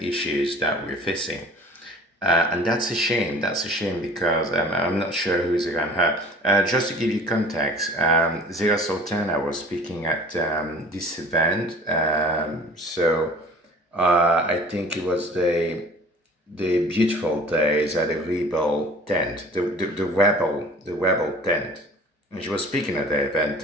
issues that we're facing. And that's a shame. That's a shame because I'm not sure who's around her. Just to give you context, Zira Sultana was speaking at this event. I think it was the beautiful days at the Rebel tent, the rebel tent, and she was speaking at the event,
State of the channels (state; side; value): normal; both; correlation 0.46